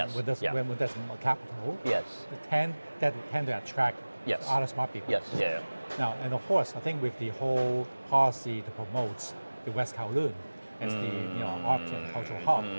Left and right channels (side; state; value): both; inverted; correlation -1.00